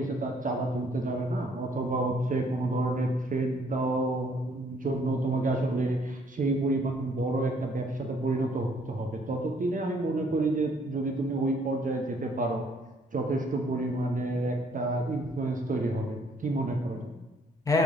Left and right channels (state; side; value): normal; both; correlation 0.64